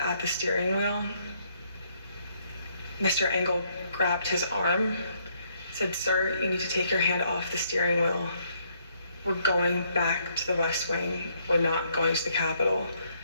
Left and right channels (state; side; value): inverted; both; correlation -0.70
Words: the steering wheel. Mr. Engel grabbed his arm, said, "Sir, you need to take your hand off the steering wheel. We're going back to the West Wing. We're not going to the Capitol."